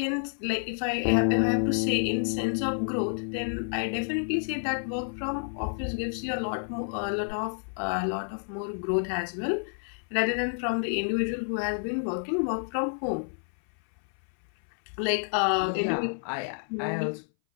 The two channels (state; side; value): silent; right; 58 dB below the other